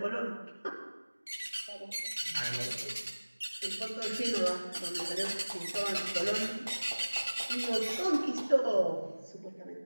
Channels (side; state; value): both; inverted; correlation -1.00